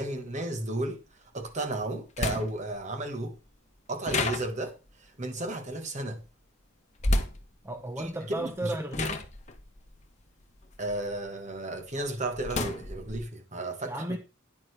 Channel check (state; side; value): normal; both; correlation 0.50